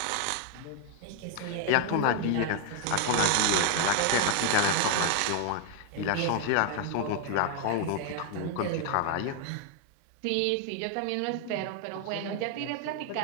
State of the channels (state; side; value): different; both; correlation 0.00